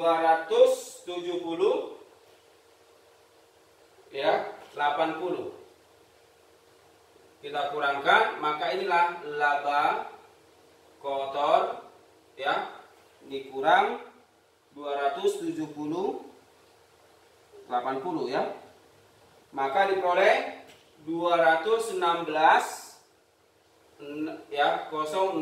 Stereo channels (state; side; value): identical; both; correlation 1.00